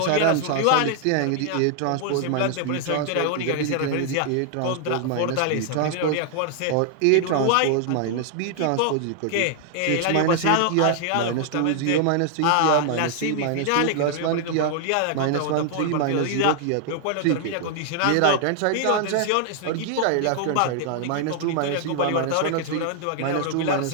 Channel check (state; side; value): different; both; correlation 0.00